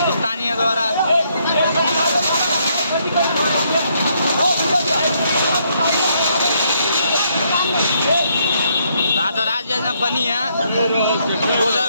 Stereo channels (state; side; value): inverted; both; correlation -0.73